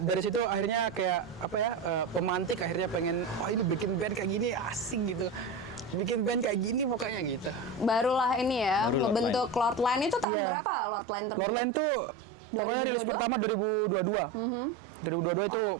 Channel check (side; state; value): left; drops out; at 10.2 s